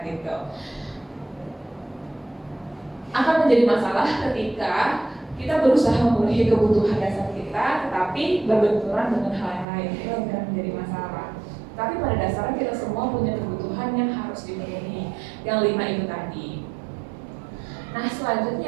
gitu. Akan menjadi masalah ketika kita berusaha memenuhi kebutuhan dasar kita, tetapi berbenturan dengan hal yang lain, itu akan menjadi masalah. Tapi pada dasarnya kita semua punya kebutuhan yang harus dipenuhi, yang 5 itu tadi. Nah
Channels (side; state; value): left; drops out; at 9.7 s